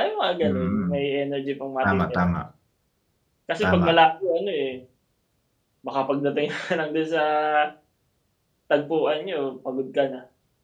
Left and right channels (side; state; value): both; identical; correlation 1.00